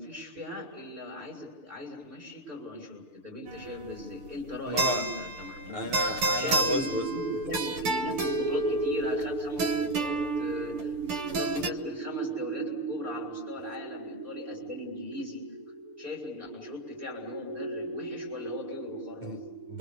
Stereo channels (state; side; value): late; left; 6.7 ms